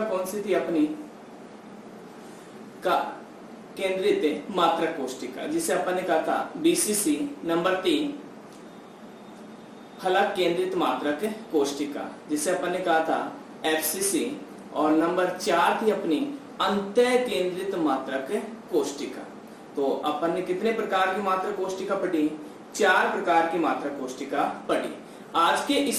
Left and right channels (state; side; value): identical; both; correlation 1.00